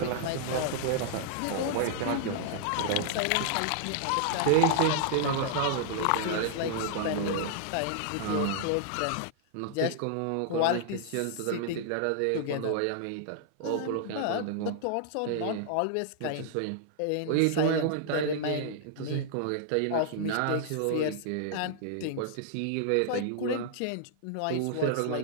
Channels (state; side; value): different; both; correlation -0.01